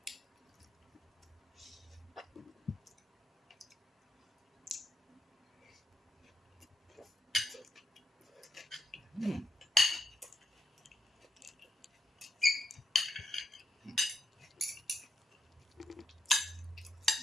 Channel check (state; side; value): normal; both; correlation 0.79